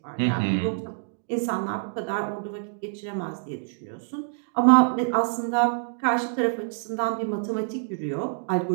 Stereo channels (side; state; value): left; silent; digital silence